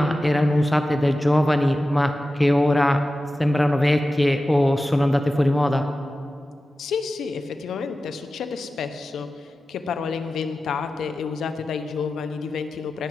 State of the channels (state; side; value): normal; both; correlation 0.94